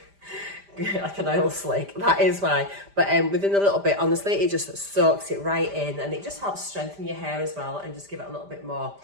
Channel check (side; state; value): left; late; 5.0 ms